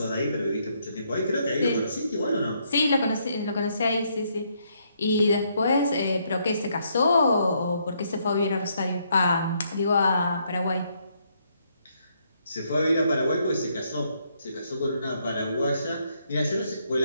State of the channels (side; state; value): both; inverted; correlation -0.73